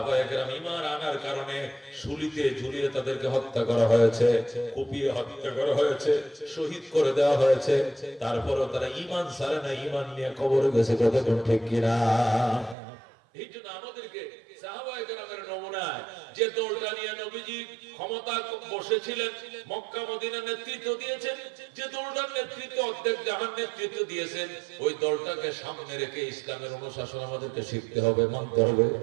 কেরাম ঈমান আনার কারণে শুলিতে ঝুলিয়ে তাদেরকে হত্যা করা হয়েছে, কুপিয়ে হত্যা করা হয়েছে, শহীদ করে দেওয়া হয়েছে। তারপরেও তারা ঈমান ছাড়ে না, ঈমান নিয়ে কবরে গেছে। কথা ঠিক কি না? এই জন্য আমাদেরকে সাহাবায়ে কেরামের নমুনায় যে দলটা নিয়ে নবীজি ক্ষমতা বসেছিলেন, মক্কা মদিনা নেতৃত্ব দিয়েছেন, যে দলটার নেতৃত্ব অর্ধেক জাহান নেতৃত্ব দিয়েছেন, ওই দলটাকে সামনে রেখে ইসলামের অনুশাসন আমাদেরকে শিখতে হবে, মানতে হবে।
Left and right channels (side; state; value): left; drops out; at 12.8 s